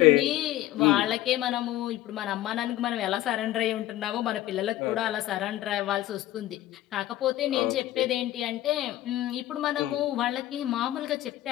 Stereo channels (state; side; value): quieter; right; 14.6 dB